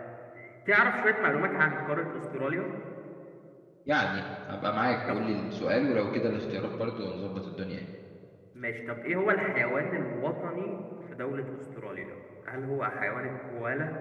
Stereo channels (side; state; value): both; identical; correlation 1.00